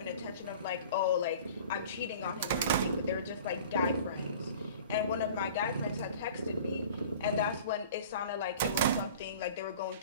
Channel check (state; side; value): inverted; both; correlation -0.44